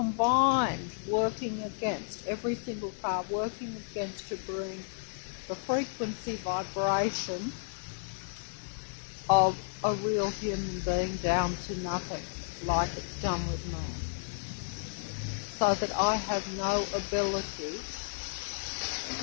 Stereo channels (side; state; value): right; silent; 56 dB below the other